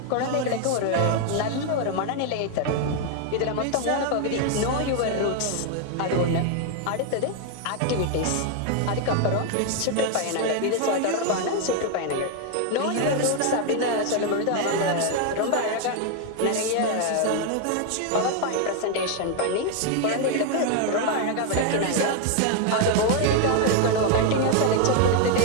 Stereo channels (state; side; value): different; both; correlation 0.01